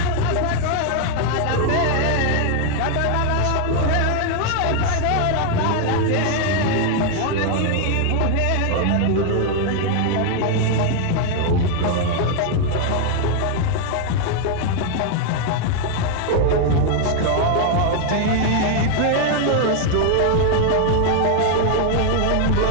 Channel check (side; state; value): both; different; correlation 0.00